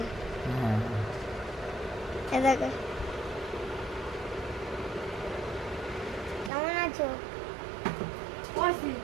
এ দেখো কেমন আছো?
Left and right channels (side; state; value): left; drops out; at 6.5 s